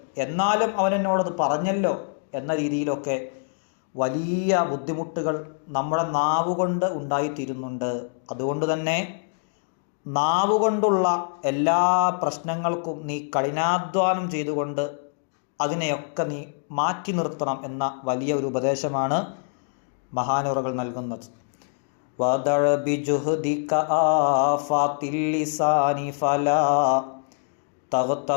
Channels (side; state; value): right; silent; digital silence